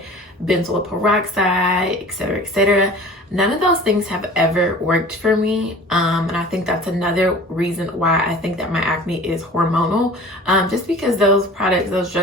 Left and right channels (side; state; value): both; normal; correlation 0.43